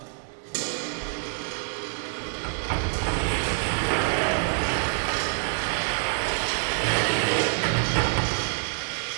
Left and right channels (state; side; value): silent; left; 61 dB below the other